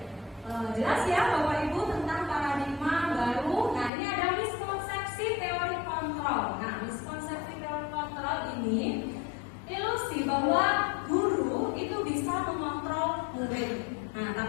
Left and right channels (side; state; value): right; drops out; at 3.9 s